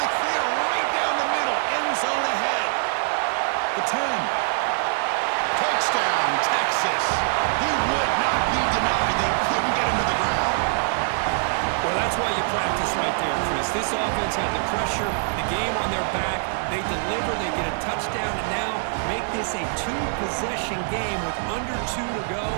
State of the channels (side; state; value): left; silent; digital silence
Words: clear right down the middle. End zone ahead. The 10. Touchdown, Texas. He would not be denied. They couldn't get him to the ground. Well, that's That's why you practice right there, Chris. This offense had the pressure, the game on their back. They deliver, they get a touchdown, and now make this a two-possession game with under 2 to go.